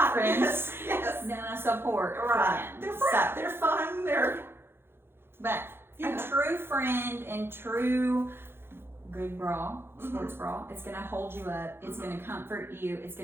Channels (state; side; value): late; left; 0.11 ms